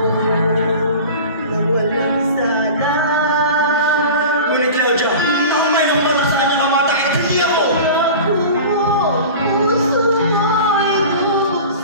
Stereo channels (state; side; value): inverted; both; correlation -0.35